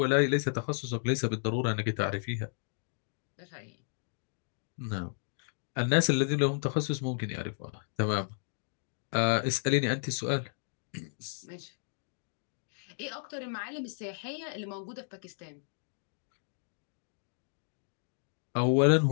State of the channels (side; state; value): right; silent; digital silence